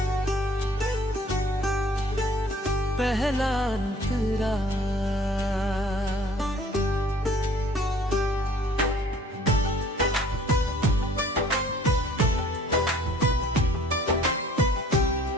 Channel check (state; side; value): normal; both; correlation 0.54